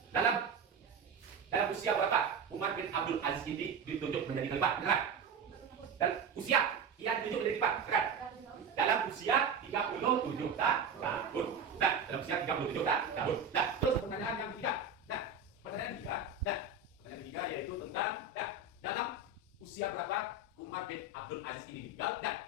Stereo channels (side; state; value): left; quieter; 4.5 dB